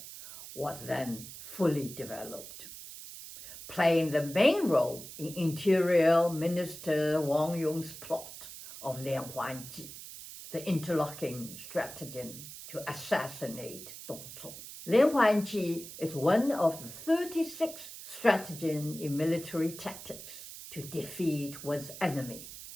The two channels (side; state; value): right; noise; hiss, 13 dB below the sound